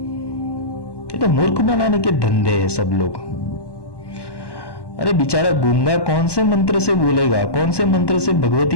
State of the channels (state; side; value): late; right; 1.1 ms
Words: ये तो मूर्ख बनाने के धंधे हैं सब लोग। अरे बेचारा गूंगा कौन से मंत्र से बोलेगा, कौन से मंत्र से